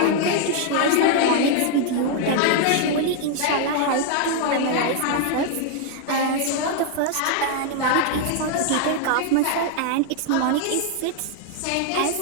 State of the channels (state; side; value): different; both; correlation 0.00